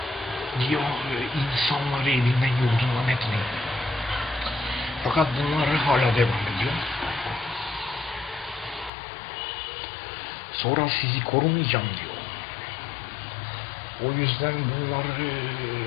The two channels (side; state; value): right; drops out; at 8.9 s